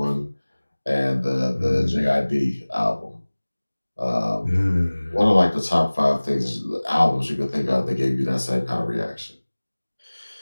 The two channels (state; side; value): inverted; both; correlation -1.00